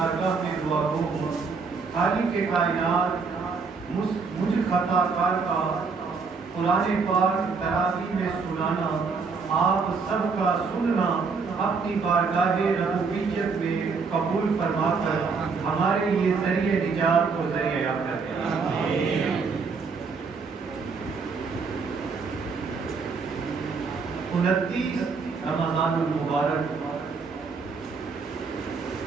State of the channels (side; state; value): left; quieter; 4.9 dB